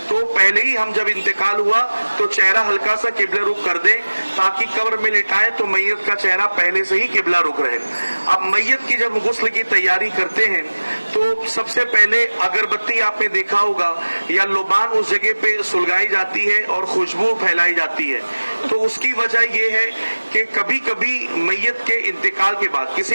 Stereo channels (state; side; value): inverted; both; correlation -1.00